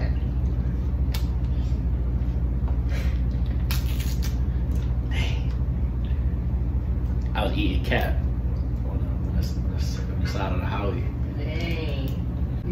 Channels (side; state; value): both; identical; correlation 1.00